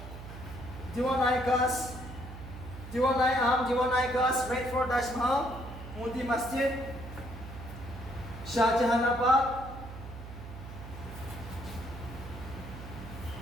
Gas, Great Fort, Taj Mahal, Moti Masjid, Shah Jahanabad,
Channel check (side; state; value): right; noise; hum, 12 dB below the sound